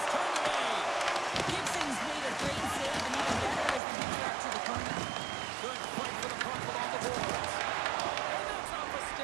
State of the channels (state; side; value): drops out; left; at 3.8 s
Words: turned away. Gibson's made a great save, and even better as they get out to the corner. Good fight for the puck along the boards. And that's off a